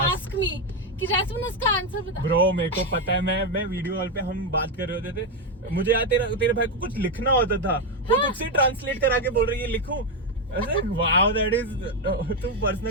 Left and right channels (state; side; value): normal; both; correlation 0.06